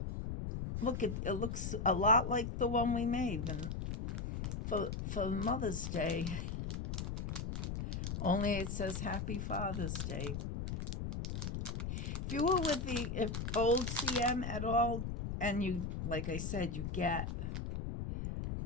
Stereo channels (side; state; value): left; noise; rumble, 3 dB below the sound